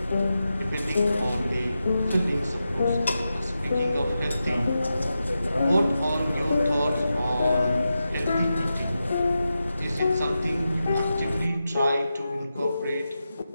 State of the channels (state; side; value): inverted; both; correlation -0.90